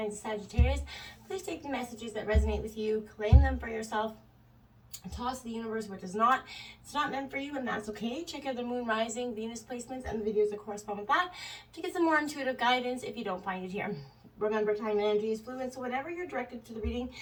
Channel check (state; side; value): identical; both; correlation 1.00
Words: of Sagittarius. Please take the messages that resonate with you, claim them for yourself, and toss the universe what does not. It's not meant for you, and that's okay. Check out the Moon, Rising, Venus placements and the videos that correspond with that to get some more intuitive guidance if you don't find it here. Remember, time and energy is fluid, so whenever you're directed to the reading